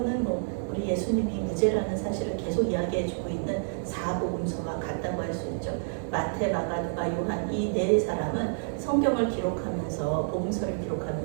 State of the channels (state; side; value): silent; left; digital silence